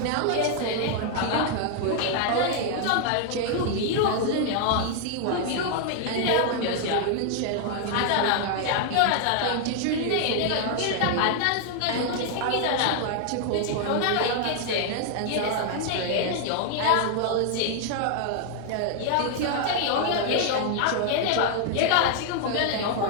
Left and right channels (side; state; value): both; different; correlation 0.00